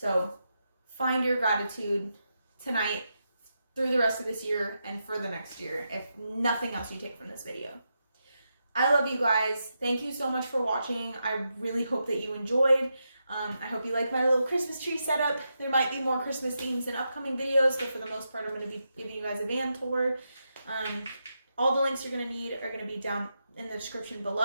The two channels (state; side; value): inverted; both; correlation -0.86